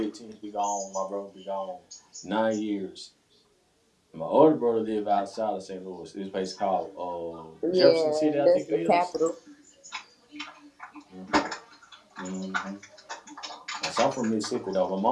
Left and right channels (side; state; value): both; identical; correlation 1.00